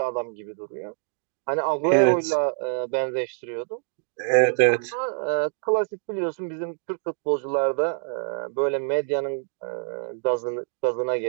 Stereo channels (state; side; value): silent; left; digital silence